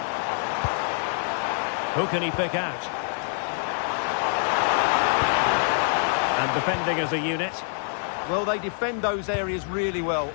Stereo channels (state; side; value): silent; right; 55 dB below the other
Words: Who can he pick out? And defending as a unit. Well, they defend those areas really well.